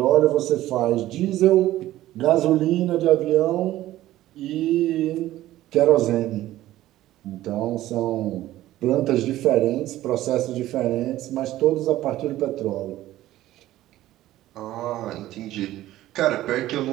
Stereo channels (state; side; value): quieter; left; 14.8 dB